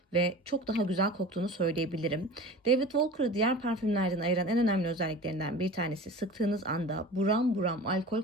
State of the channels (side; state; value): both; normal; correlation 0.37